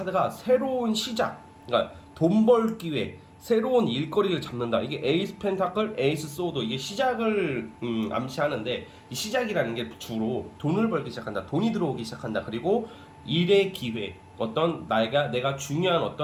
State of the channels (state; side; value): identical; both; correlation 1.00